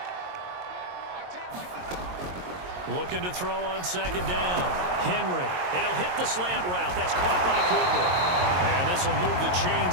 Looking to throw on second down. Henry. And he'll hit the slant route. That's caught by Cooper. And this will move the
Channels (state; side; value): late; left; 22 ms